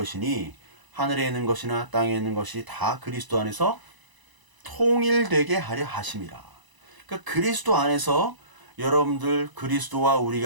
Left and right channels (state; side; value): late; left; 1.0 ms